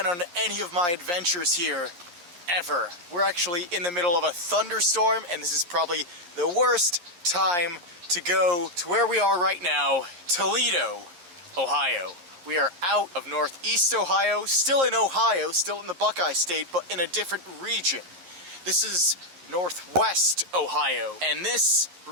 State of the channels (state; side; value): late; left; 11 ms